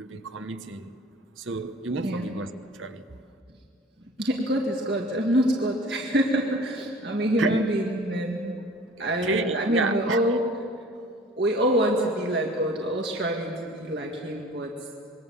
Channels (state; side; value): normal; both; correlation 0.46